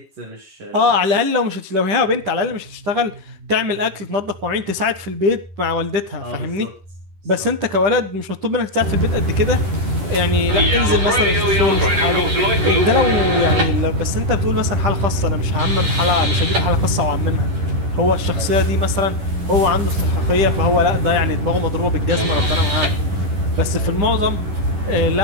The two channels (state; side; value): late; left; 11 ms